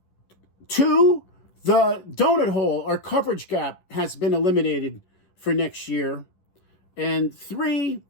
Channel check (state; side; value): late; right; 11 ms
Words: Two, the donut hole or coverage gap has been eliminated for next year. And three